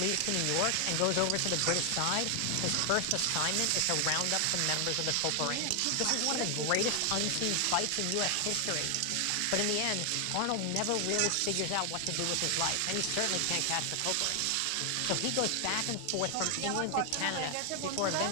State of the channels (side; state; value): both; different; correlation 0.00